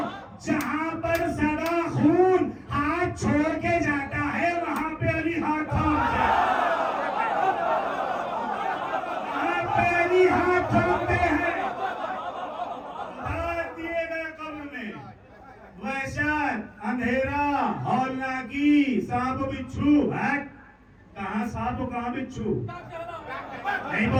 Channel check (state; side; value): identical; both; correlation 1.00